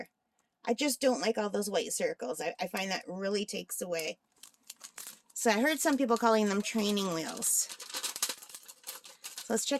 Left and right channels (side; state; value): both; identical; correlation 1.00